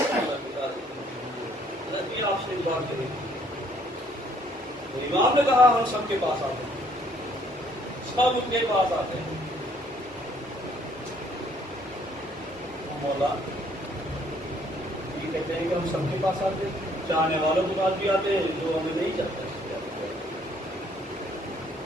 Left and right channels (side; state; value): both; normal; correlation 0.64